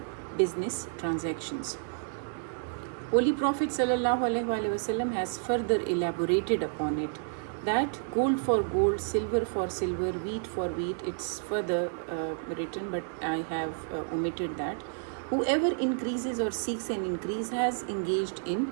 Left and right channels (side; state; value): left; silent; digital silence